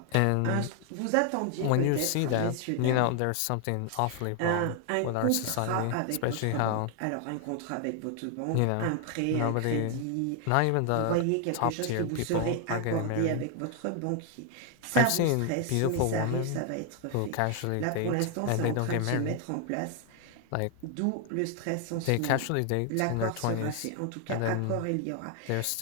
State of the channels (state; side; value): different; both; correlation 0.00